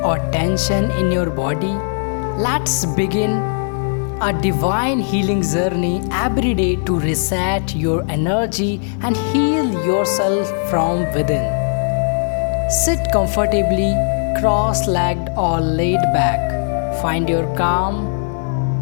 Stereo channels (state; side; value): silent; right; 67 dB below the other